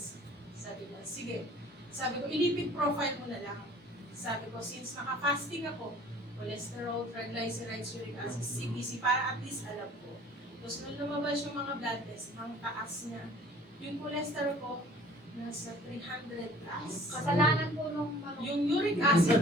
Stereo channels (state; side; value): normal; both; correlation 0.50